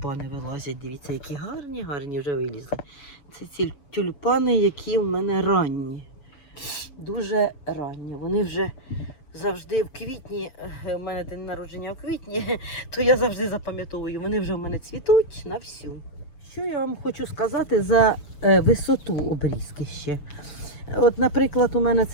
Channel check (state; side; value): late; right; 7.0 ms